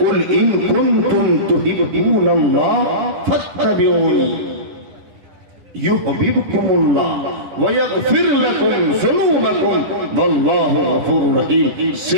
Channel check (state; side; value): late; left; 10 ms